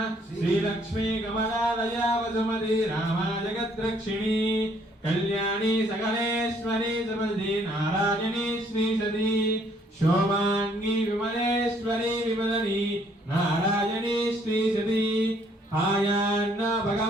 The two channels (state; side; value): normal; both; correlation 0.65